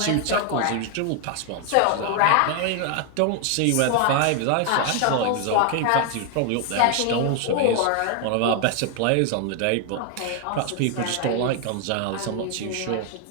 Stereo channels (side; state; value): both; different; correlation 0.00